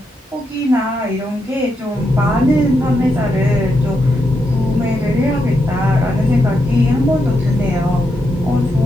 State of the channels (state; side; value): normal; both; correlation 0.83